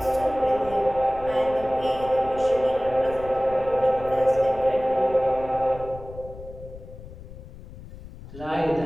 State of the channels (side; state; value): left; noise; rumble, 15 dB below the sound